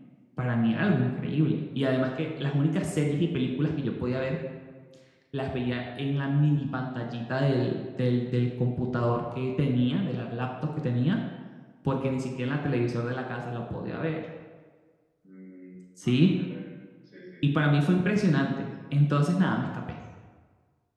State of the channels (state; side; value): identical; both; correlation 1.00